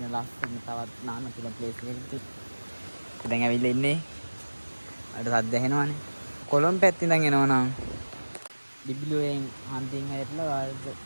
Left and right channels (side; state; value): both; inverted; correlation -1.00